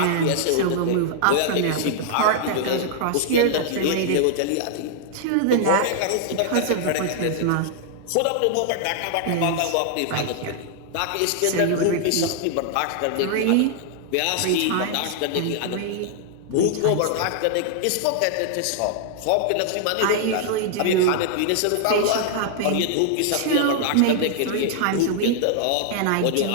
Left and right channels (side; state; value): both; different; correlation -0.01